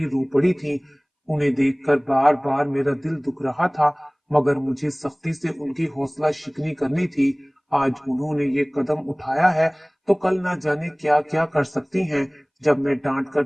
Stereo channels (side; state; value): both; identical; correlation 1.00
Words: रो पड़ी थीं। उन्हें देखकर बार बार मेरा दिल दुख रहा था, मगर मुझे सख्ती से उनकी हौसला शिकनी करनी थी। आज उन्होंने ये कदम उठाया है तो कल ना जाने क्या क्या कर सकती हैं। जब मैं डांट कर